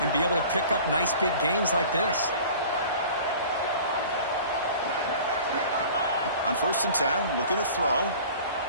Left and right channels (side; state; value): both; inverted; correlation -0.43